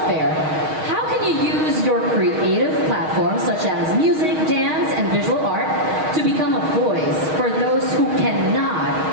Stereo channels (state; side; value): late; left; 6.4 ms